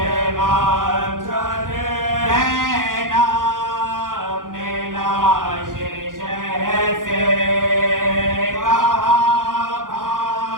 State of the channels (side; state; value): left; late; 0.90 ms